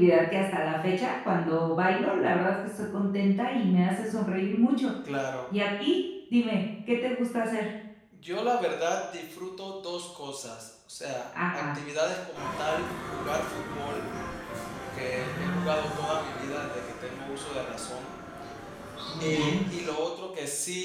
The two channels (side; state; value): both; identical; correlation 1.00